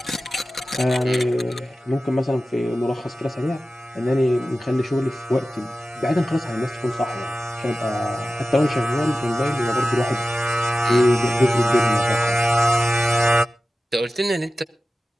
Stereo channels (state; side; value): normal; both; correlation 0.95